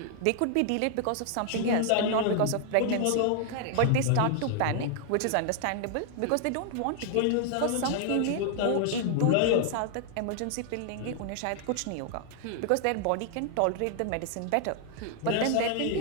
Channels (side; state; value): both; different; correlation 0.00